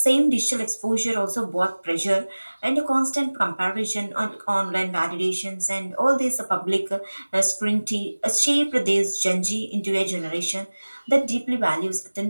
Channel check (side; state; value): both; inverted; correlation -1.00